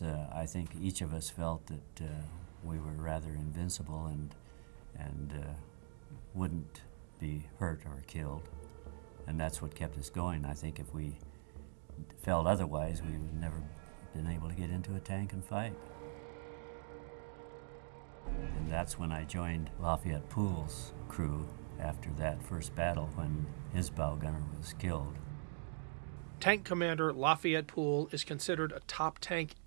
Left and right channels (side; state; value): left; silent; digital silence